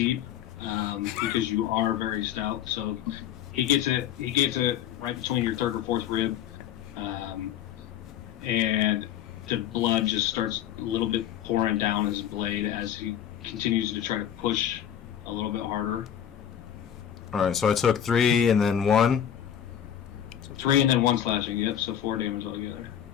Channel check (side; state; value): right; quieter; 9.9 dB